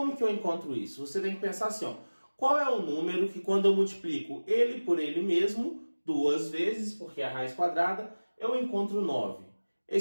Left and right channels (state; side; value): inverted; both; correlation -1.00